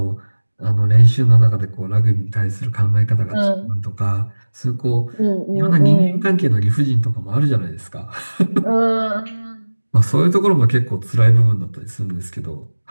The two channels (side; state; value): both; inverted; correlation -1.00